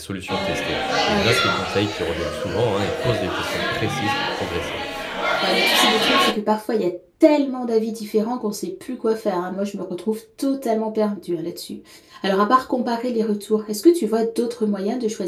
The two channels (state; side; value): identical; both; correlation 1.00